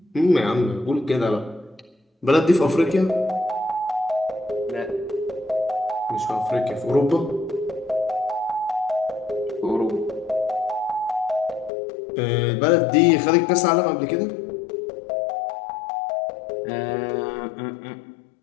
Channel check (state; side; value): drops out; right; at 11.7 s